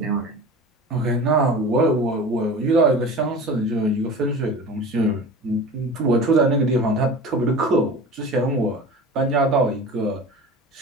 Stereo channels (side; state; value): both; normal; correlation 0.36